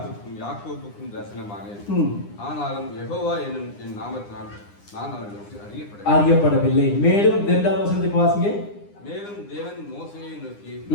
யாக்கோபுக்கும் தரிசனமானேன். ஆனாலும் யெகோவா என்னும் என் நாமத்தினால் நான் அவர்களுக்கு அறியப்படவில்லை. மேலும் 2வது வசனத்துக்கு வாசிங்க. மேலும் தேவன் மோசேயை நோக்கி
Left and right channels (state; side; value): late; right; 9.8 ms